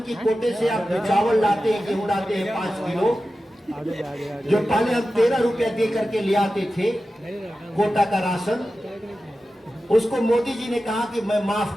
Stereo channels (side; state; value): both; normal; correlation 0.93